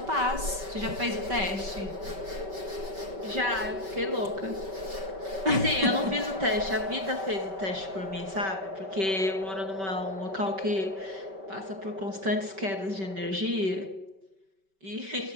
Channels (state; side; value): late; left; 5.2 ms